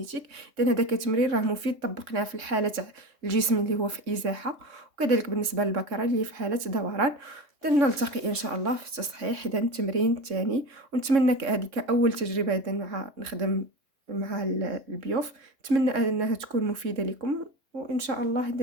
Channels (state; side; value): late; left; 3.6 ms